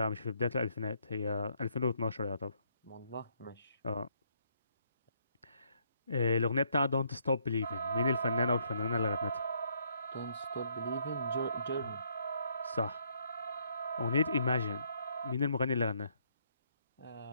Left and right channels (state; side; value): inverted; both; correlation -0.71